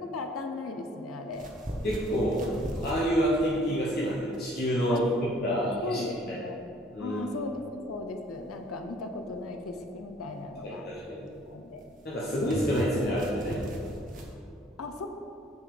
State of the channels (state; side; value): normal; both; correlation 0.57